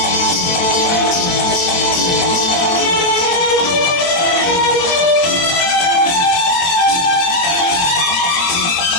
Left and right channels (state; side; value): late; right; 23 ms